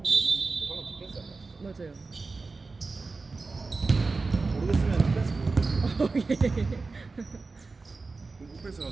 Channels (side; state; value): left; quieter; 3.9 dB